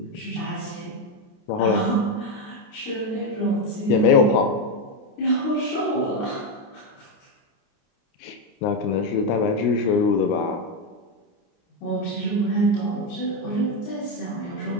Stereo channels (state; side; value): late; right; 29 ms